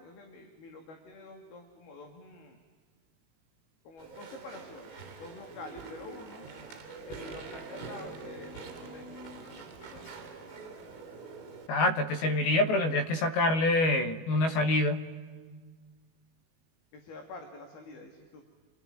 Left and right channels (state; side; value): late; right; 19 ms